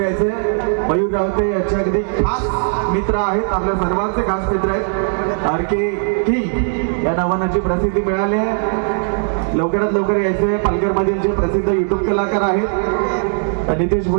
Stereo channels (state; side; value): silent; left; 62 dB below the other